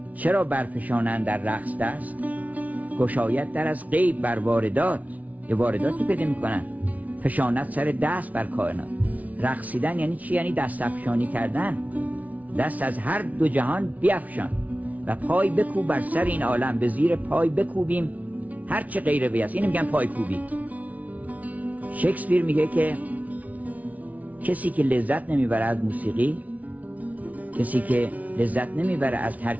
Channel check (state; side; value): late; left; 0.071 ms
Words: چرا برفشانند در رقص دست؟ گشاید در از غیب بر واردات، یه وارداتی پیدا میکنن، فشانت سر دست بر کائنات. رقصیدن یعنی چی؟ یعنی دست افشانی کردن، دست از هر دو جهان بیفشان و پای بکوب بر سر این عالم، به زیر پای بکوبیم هر چه غیر وی است. اینو میگن پای کوبی. شکسپیر میگه که کسی که لذت نمیبره از موسیقی، کسی که لذت نمیبره از